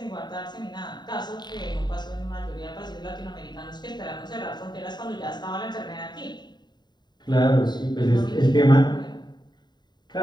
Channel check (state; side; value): late; right; 0.21 ms